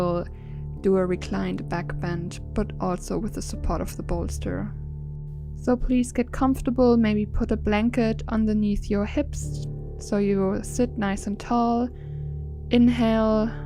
do a reclined back bend, but also with the support of the bolster. So please get comfortable, maybe put a blanket underneath your hips so you sit nice and tall. Inhale,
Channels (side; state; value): both; identical; correlation 1.00